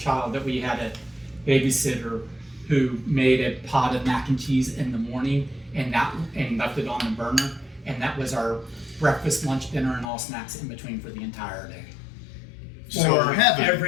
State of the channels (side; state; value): right; drops out; at 10.1 s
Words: that we had a babysitter who made a pot of mac and cheese in the morning and left it on the burner, and that was our breakfast, lunch, dinner, and all snacks in between for the entire day. so For heaven.